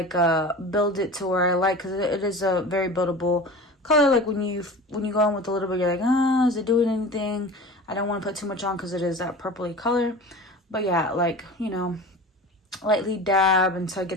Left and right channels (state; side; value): normal; both; correlation 0.35